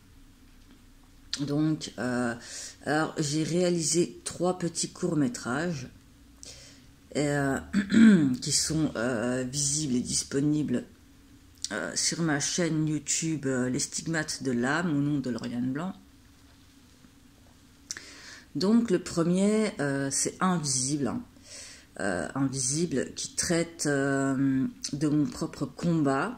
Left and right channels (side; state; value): both; identical; correlation 1.00